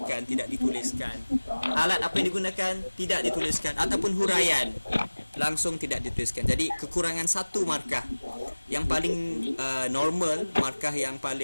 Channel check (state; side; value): inverted; both; correlation -1.00